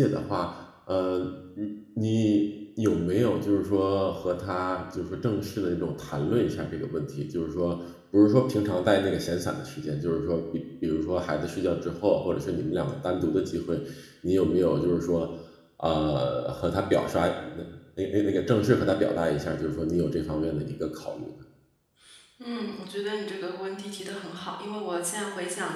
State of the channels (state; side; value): identical; both; correlation 1.00